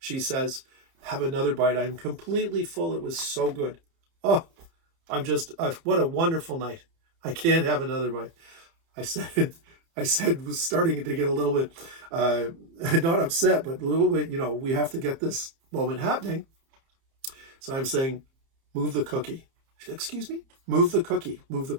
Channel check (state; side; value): late; left; 30 ms